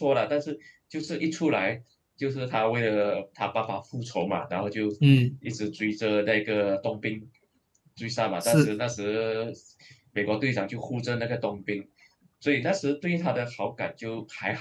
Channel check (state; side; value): identical; both; correlation 1.00